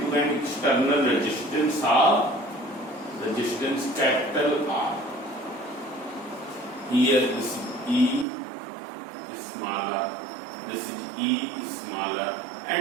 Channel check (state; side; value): drops out; left; at 8.2 s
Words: an external resistance of capital R. Here is E smaller, this is E smaller,